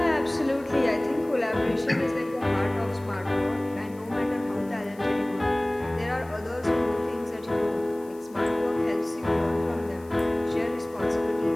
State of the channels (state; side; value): noise; left; hiss, 27 dB below the sound